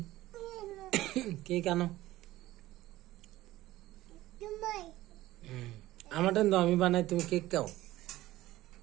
কেক আনো আমারটা তো আমি বানাই তুমি কেক খাও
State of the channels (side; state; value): left; quieter; 16.3 dB